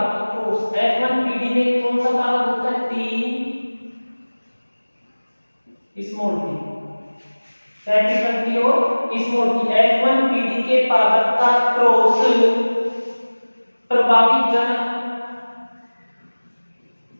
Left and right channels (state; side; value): inverted; both; correlation -1.00